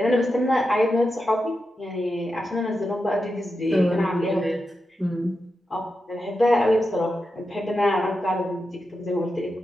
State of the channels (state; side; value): normal; both; correlation 0.89